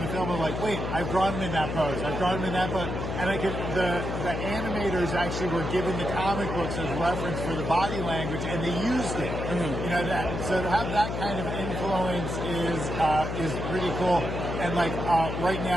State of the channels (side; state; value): left; noise; hum, 3 dB below the sound